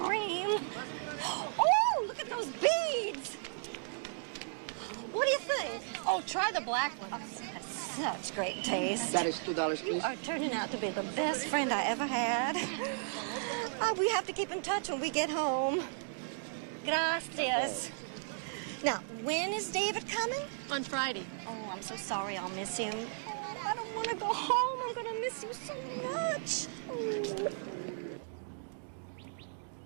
Oh, look at those beads. What do you think? Oh, try the black one. Such great taste. That is $2, please. You are turning out to be the best friend I ever had. We have to keep in touch when we get home. Gracias. Now, when is David coming? On Friday. Oh, I'm so sorry I'll miss him. I don't want to go home. I'm going to miss you so much.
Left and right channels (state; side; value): silent; left; digital silence